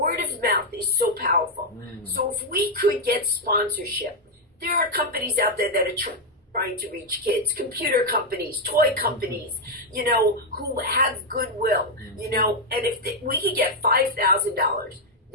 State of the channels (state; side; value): normal; both; correlation 0.01